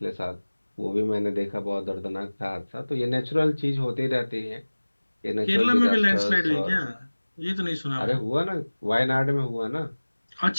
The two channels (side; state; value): both; inverted; correlation -1.00